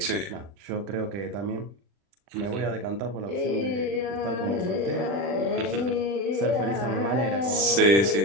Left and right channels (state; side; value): late; left; 40 ms